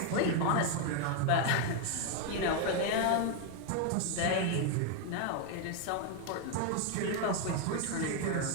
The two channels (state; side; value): different; both; correlation 0.01